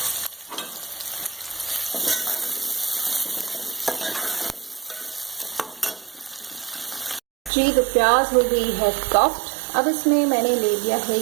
जी तो प्याज हो गई है सॉफ्ट। अब इसमें मैंने ले लिया है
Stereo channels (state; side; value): drops out; left; at 7.5 s